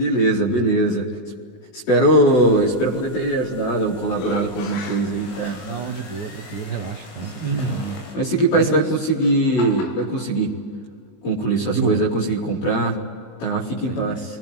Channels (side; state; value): right; late; 19 ms